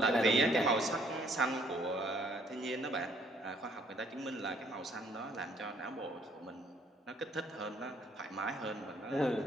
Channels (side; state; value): both; normal; correlation 0.64